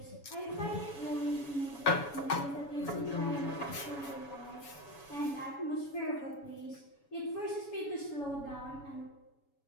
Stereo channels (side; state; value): right; late; 7.1 ms